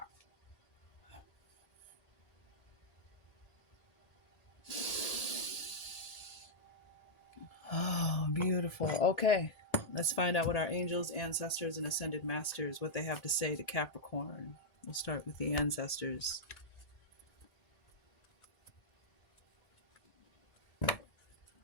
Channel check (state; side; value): late; right; 1.8 ms